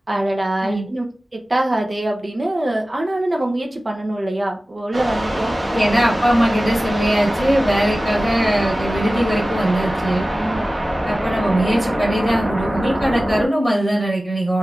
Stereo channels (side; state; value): both; normal; correlation 0.96